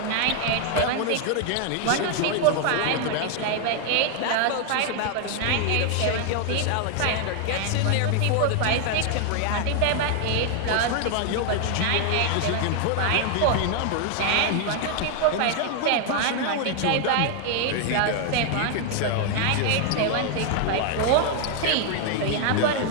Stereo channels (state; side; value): different; both; correlation 0.00